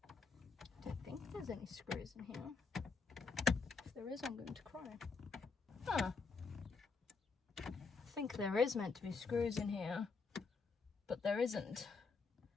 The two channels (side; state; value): right; quieter; 4.7 dB